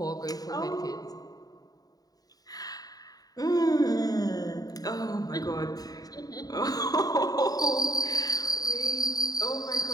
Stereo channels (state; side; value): late; right; 0.18 ms